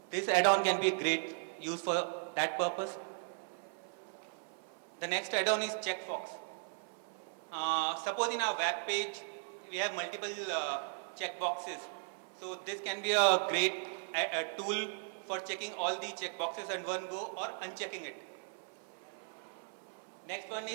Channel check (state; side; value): silent; left; 53 dB below the other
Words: this add-on can be a great use for that purpose. The next add-on is Checkbox. Suppose in our web page we have multiple checkboxes. So this can be a great tool for checking all the checkboxes in one go or unchecking it. Next one